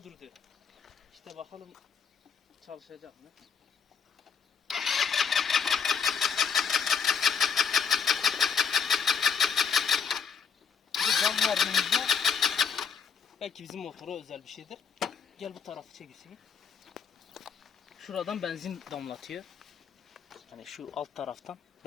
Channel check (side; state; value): right; quieter; 6.3 dB